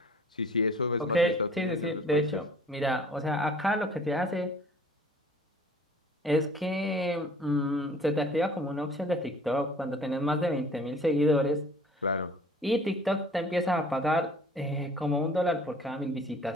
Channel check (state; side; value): normal; both; correlation 0.51